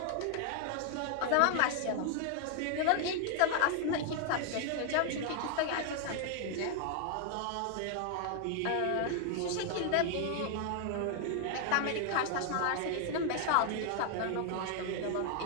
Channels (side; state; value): both; different; correlation 0.00